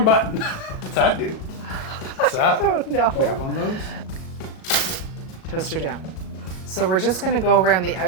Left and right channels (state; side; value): late; right; 37 ms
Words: button. What's that do? What's that? Oh no. We have one of those? Toaster down. So we're just gonna go around the